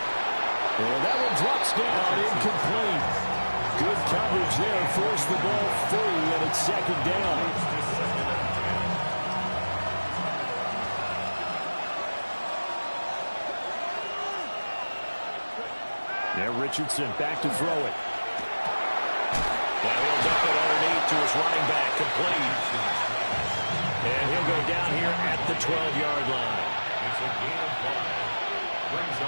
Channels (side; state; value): both; inverted; correlation -1.00